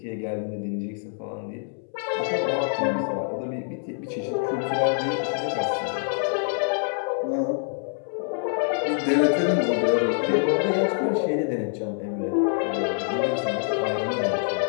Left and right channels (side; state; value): right; silent; 61 dB below the other